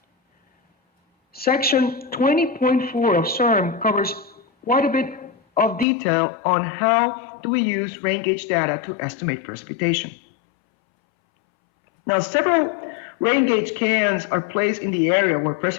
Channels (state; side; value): drops out; right; at 5.9 s